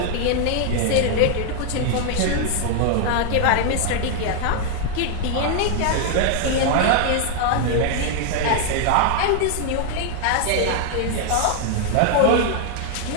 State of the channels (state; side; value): different; both; correlation 0.00